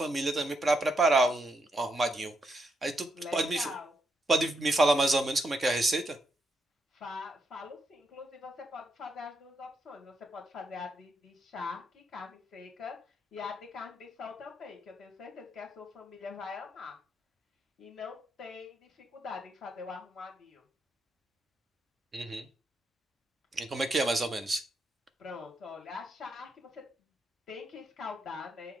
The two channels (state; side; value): normal; both; correlation 0.80